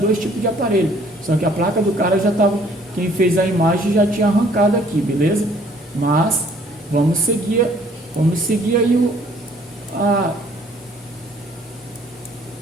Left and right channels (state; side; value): normal; both; correlation 0.59